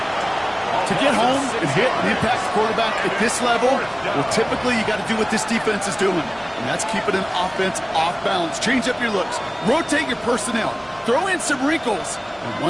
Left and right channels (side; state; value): both; identical; correlation 1.00